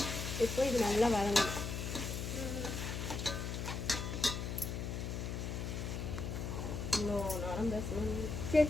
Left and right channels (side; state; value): left; noise; hum, 3 dB below the sound